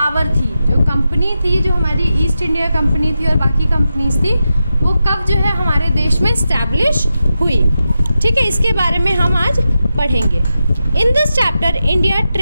थी, जो कंपनी थी, जो हमारी ईस्ट इंडिया कंपनी थी और बाकी कंपनीज थी, वो कब जो है हमारे देश में इस्टेब्लिश हुई. ठीक है, इसके बारे में हम आज पढ़ेंगे. In this chapter India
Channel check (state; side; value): inverted; both; correlation -0.89